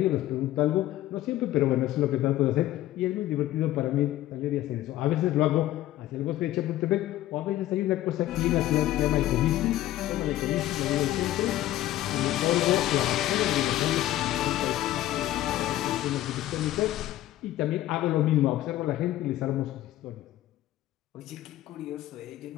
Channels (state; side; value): quieter; right; 14.5 dB